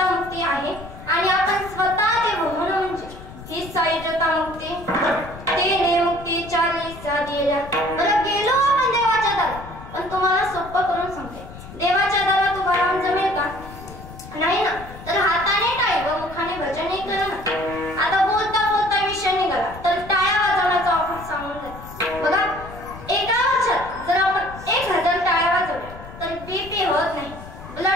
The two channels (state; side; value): noise; left; rumble, 15 dB below the sound